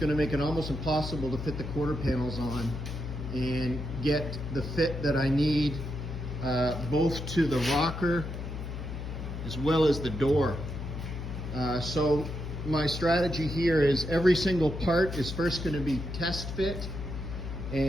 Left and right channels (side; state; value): left; noise; hum, 6 dB below the sound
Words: to make it almost impossible to fit the quarter panels on and get the fit that I need both to the rocker as well as the door. So my strategy here is every single part is first going to be test fit